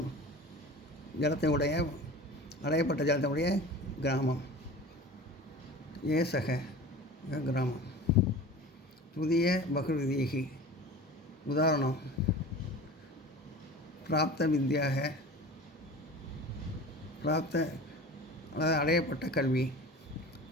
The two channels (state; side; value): normal; both; correlation 0.37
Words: ஜலத்தை உடைய அடையப்பட்ட ஜலத்தை உடைய கிராமம் ஏ சக கிராமம். புதிய பகுவிதீகி உதாரணம் பிராப்த வித்யாக பிராப்த அதாவது அடையப்பட்ட கல்வி.